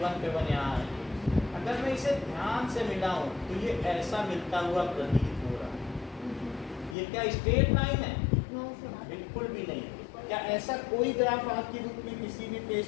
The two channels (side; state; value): right; drops out; at 7.0 s